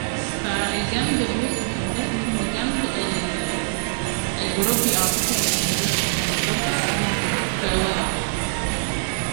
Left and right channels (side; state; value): left; silent; digital silence